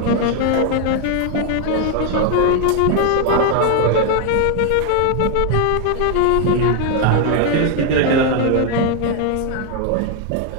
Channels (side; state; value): both; different; correlation 0.00